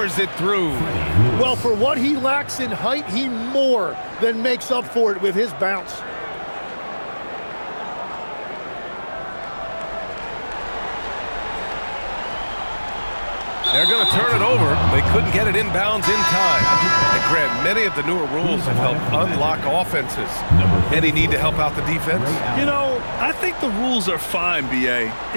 it through. Well, for what he lacks in height, he more than makes up for it with his bounce. They're going to turn it over. They couldn't get it inbounds in time. And Grant, many of the newer rules have helped unlock offenses. Any need to help out the defense? You know, I think the rules are fine, BA.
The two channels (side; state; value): both; inverted; correlation -1.00